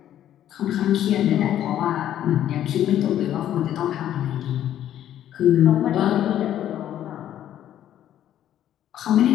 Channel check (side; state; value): right; quieter; 11.4 dB